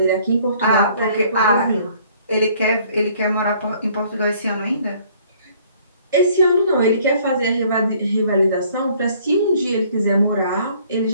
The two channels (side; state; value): both; inverted; correlation -0.59